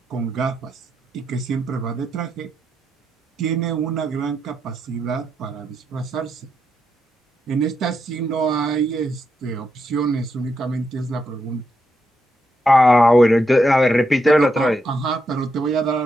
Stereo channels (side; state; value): both; normal; correlation 0.82